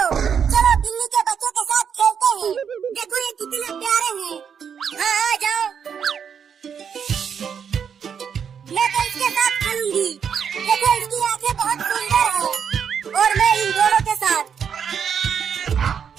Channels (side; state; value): left; quieter; 7.4 dB